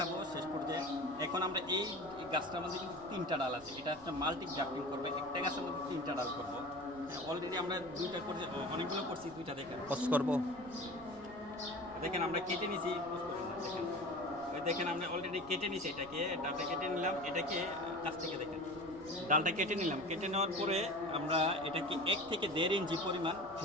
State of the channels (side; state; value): right; noise; rumble, 20 dB below the sound